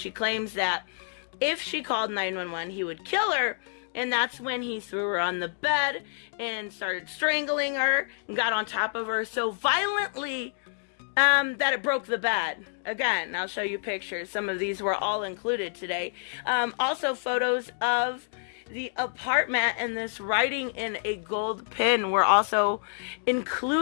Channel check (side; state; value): right; silent; digital silence